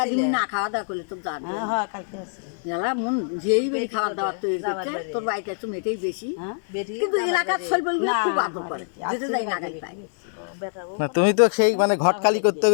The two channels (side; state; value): right; silent; digital silence